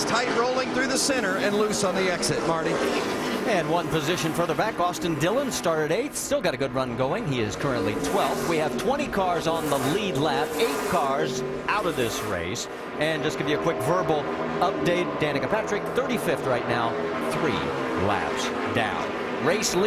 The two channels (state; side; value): identical; both; correlation 1.00